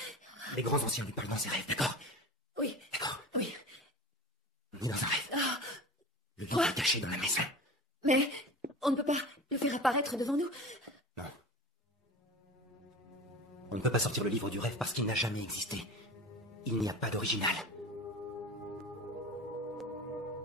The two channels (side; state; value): both; normal; correlation 0.34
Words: Les grands anciens lui parlent dans ses rêves, d'accord? Oui. D'accord. Oui. Ni dans un rêve. Ah. Le livre est caché dans la maison. Mais on ne peut pas le faire apparaître devant nous. Non. On ne peut pas sortir le livre du rêve parce qu'il n'a jamais existé. Il n'y a pas d'original.